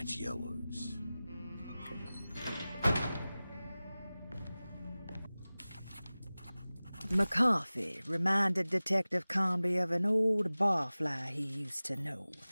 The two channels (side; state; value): both; inverted; correlation -0.98